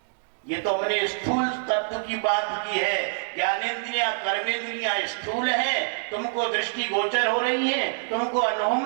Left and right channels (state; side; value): silent; left; digital silence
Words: ये तो हमने स्थूल तत्व की बात की है। ज्ञानेंद्रियां कर्मेंद्रियां स्थूल हैं, तुमको दृष्टि गोचर हो रही हैं, तुमको अनुभव